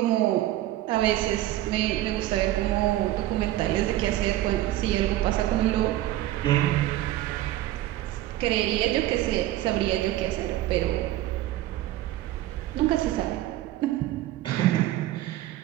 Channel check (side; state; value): left; quieter; 14.8 dB